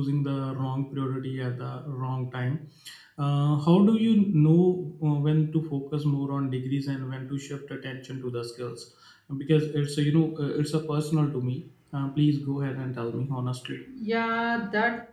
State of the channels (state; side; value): identical; both; correlation 1.00